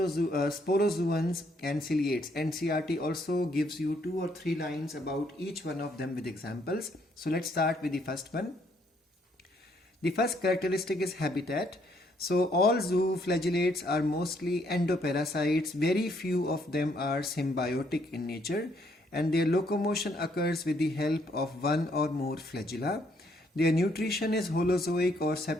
and ciliates. NCERT also gives you 2 or 3 lines about each one of them with examples. So let's start with the first one. The first characteristic is habitat. So all zooflagellates are mostly endoparasites. Very few of them are symbiotic in nature, and their locomotion occurs with the help of one or more flagella. Their nutrition is holozoic or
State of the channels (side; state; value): both; normal; correlation 0.70